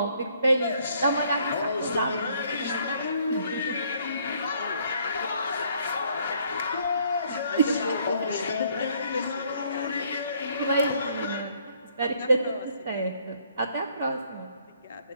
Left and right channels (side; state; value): both; inverted; correlation -0.65